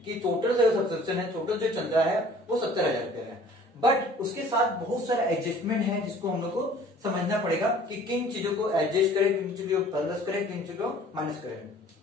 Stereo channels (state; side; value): normal; both; correlation 0.51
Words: कि टोटल जो सब्सक्रिप्शन है, टोटल जो चल रहा है वो 70,000 रुपया है. बट उसके साथ बहुत सारा एडजस्टमेंट है जिसको हम लोग को समझना पड़ेगा कि किन चीजों को एडजस्ट करें, किन चीजों को प्लस करें, किन चीजों को माइनस करें.